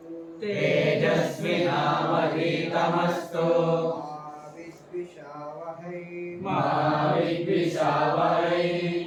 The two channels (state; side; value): identical; both; correlation 1.00